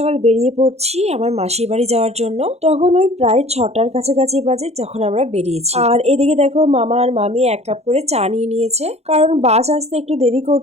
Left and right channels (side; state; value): left; late; 0.31 ms